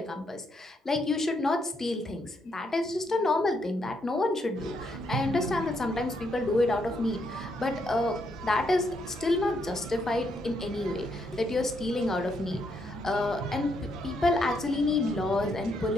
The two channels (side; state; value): both; normal; correlation 0.76